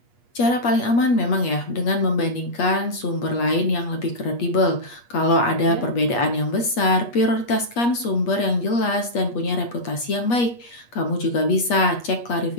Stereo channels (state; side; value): late; right; 8.4 ms